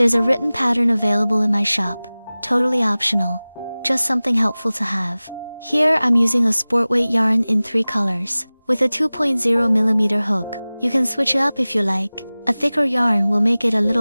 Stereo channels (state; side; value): inverted; both; correlation -0.99